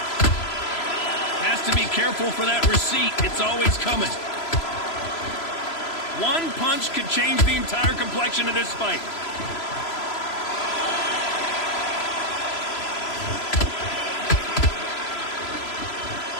Has to be careful for that receipt. It's always coming. One punch could change the entire complexion of this fight.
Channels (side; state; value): right; late; 3.0 ms